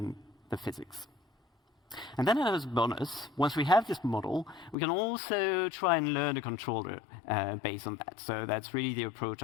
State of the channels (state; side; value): drops out; right; at 4.8 s